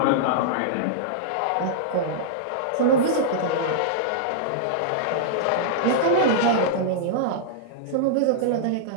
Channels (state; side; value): different; both; correlation -0.03